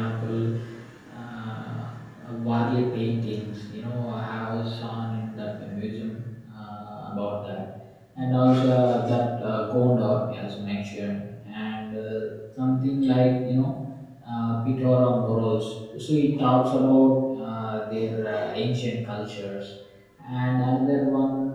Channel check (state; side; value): identical; both; correlation 1.00